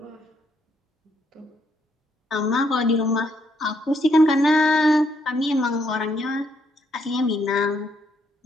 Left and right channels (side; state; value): both; normal; correlation 0.73